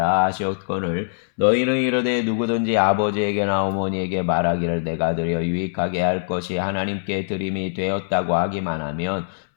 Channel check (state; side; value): silent; right; 64 dB below the other